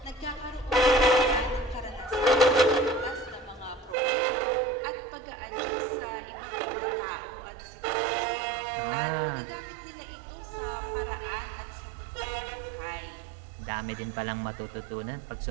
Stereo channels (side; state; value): left; drops out; at 4.0 s